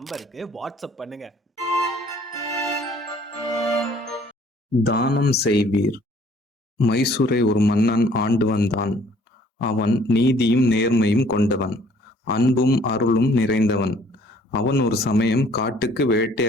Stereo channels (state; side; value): normal; both; correlation 0.58